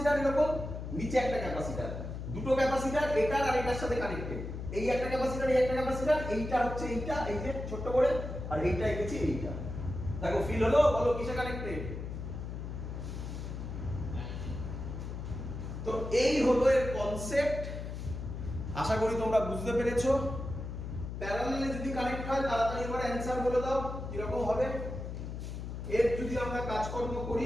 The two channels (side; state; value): left; noise; hum, 7 dB below the sound